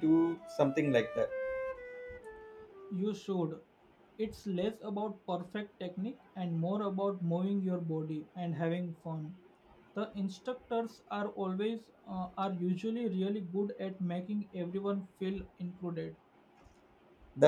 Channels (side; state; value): both; identical; correlation 1.00